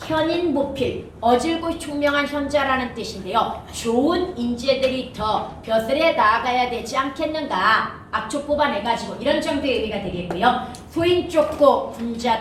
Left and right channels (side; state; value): both; identical; correlation 1.00